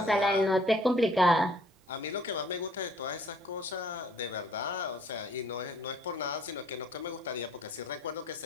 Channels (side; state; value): both; normal; correlation 0.59